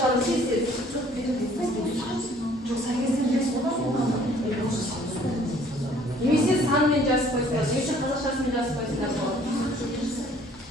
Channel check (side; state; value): both; normal; correlation 0.57